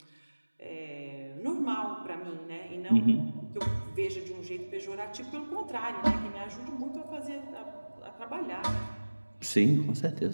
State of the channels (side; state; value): both; inverted; correlation -1.00